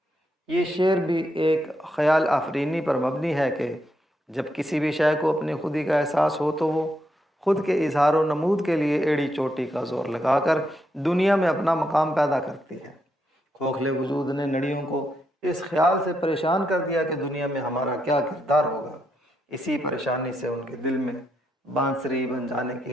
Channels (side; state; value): both; normal; correlation 0.80